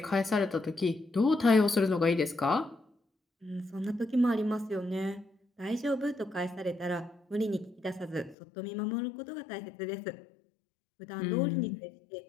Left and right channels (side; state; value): right; drops out; at 8.3 s